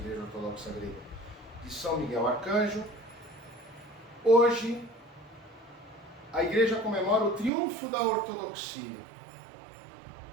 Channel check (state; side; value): drops out; left; at 7.5 s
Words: Ortodoxa Grega de São Miguel Arcanjo. Hoje, a Igreja comemora o triunfo da ortodoxia.